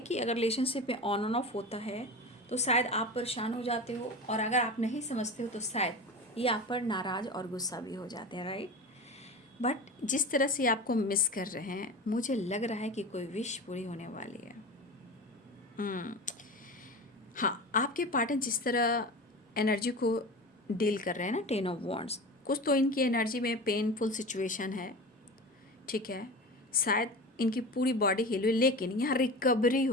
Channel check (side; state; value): both; normal; correlation 0.30